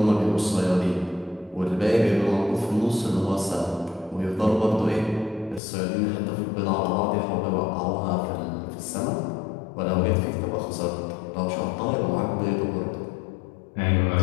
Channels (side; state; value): right; drops out; at 5.6 s